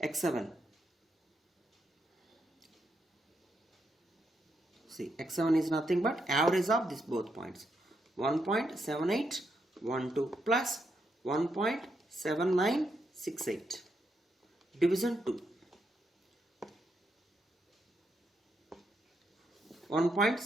x7. See, x7 is nothing but average of these both points. 1.7812 plus 1.7968 division 2.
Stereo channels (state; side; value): normal; both; correlation 0.80